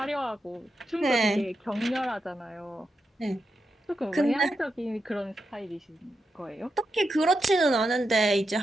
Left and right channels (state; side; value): normal; both; correlation 0.87